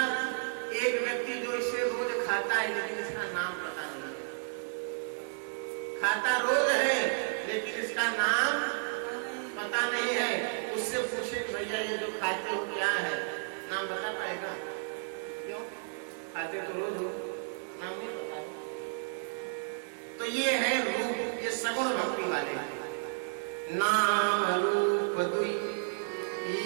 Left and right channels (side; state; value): left; silent; digital silence